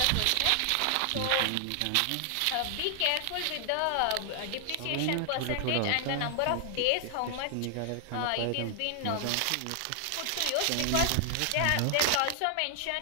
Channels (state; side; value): different; both; correlation 0.00